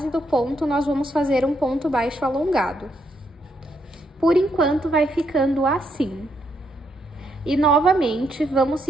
do ponto, nós vamos fazer um ponto baixo alongado. Por enquanto, vai ficando assim. E, novamente, vamos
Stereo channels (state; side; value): normal; both; correlation 0.77